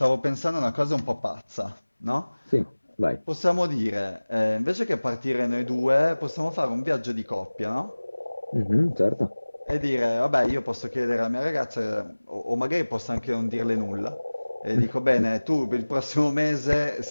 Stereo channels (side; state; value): both; inverted; correlation -1.00